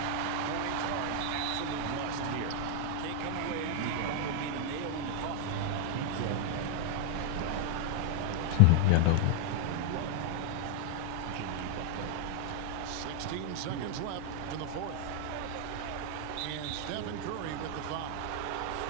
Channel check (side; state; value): both; different; correlation 0.00